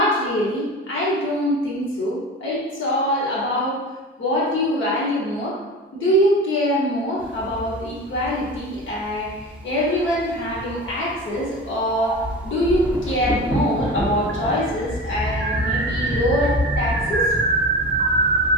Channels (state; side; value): normal; both; correlation 0.31